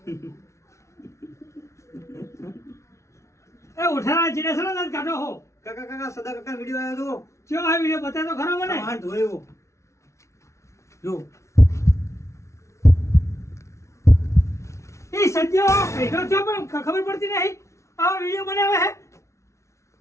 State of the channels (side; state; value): right; late; 0.14 ms